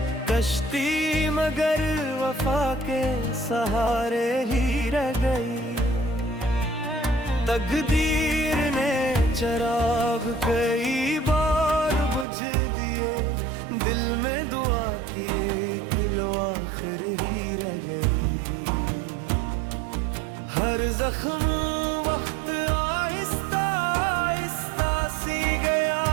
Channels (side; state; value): left; drops out; at 12.2 s